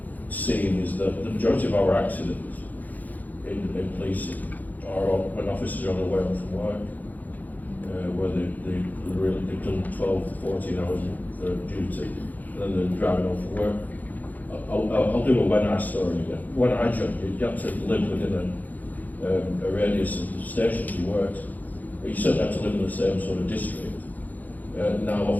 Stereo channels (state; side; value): late; right; 0.081 ms